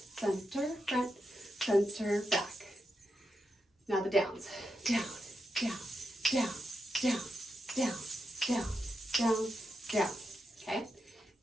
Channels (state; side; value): normal; both; correlation 0.86